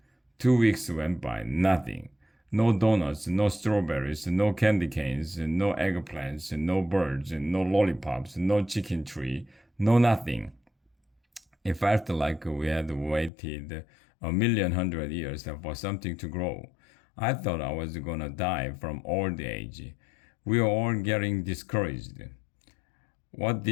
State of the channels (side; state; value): right; drops out; at 13.3 s